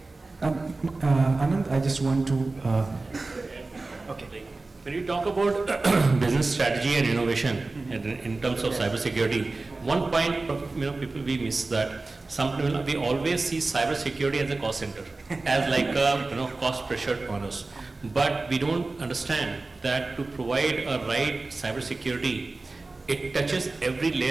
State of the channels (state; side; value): quieter; left; 3.4 dB